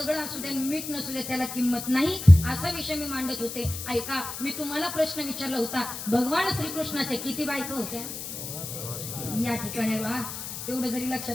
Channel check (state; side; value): noise; left; hiss, 8 dB below the sound